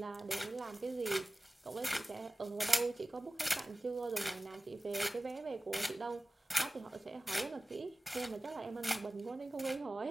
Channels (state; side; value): normal; both; correlation 0.97